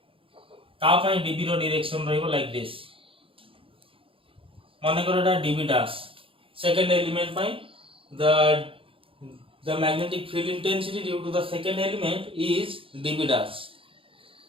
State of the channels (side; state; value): left; late; 0.26 ms